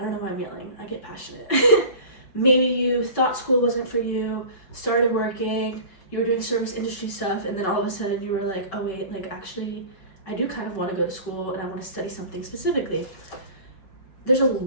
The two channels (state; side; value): late; right; 5.3 ms